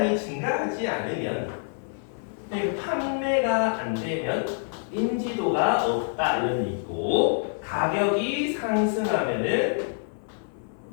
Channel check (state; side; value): silent; right; 60 dB below the other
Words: 증가하지 않으면 그리고 판매가 안 되면 인지도가 없다 이런 얘기 있고 가격이 상승하면은